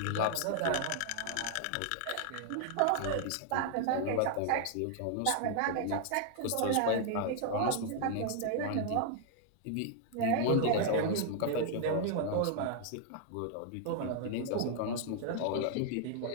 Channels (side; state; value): both; different; correlation 0.00